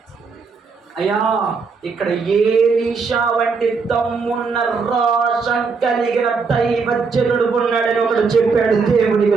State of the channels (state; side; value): quieter; left; 4.9 dB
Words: అయ్యా ఇక్కడ ఎలీషా వంటి దమ్మున్న రోషం కలిగిన దైవజనుడు ఉన్నాడని ఒకడు చెప్పాడు.